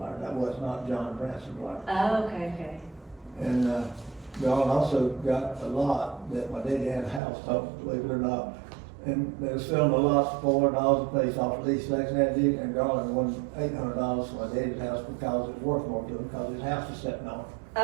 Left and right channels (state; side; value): drops out; left; at 7.2 s